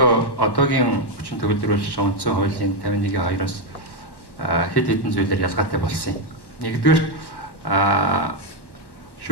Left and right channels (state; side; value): late; right; 1.1 ms